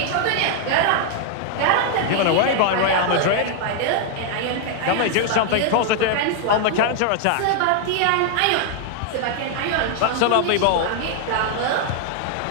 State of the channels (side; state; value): both; different; correlation 0.00